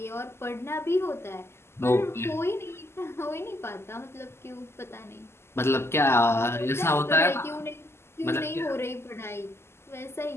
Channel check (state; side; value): late; right; 0.12 ms